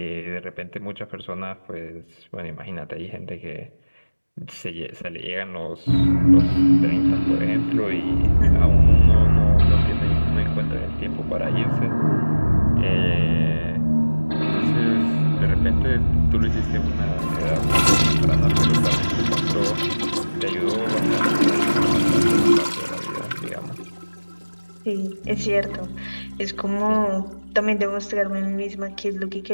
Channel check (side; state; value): both; inverted; correlation -1.00